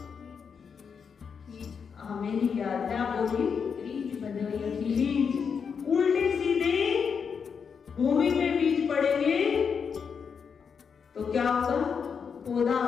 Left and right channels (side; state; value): right; quieter; 6.4 dB